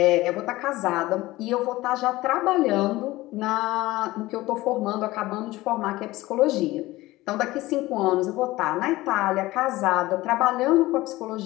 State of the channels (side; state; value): right; quieter; 18.5 dB